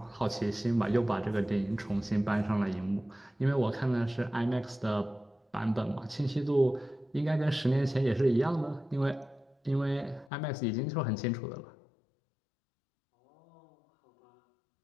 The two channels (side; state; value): right; drops out; at 10.3 s